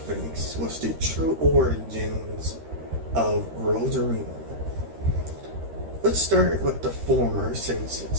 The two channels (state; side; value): late; left; 13 ms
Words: thinks was the true origins of Rosarina. Let's start with the former, since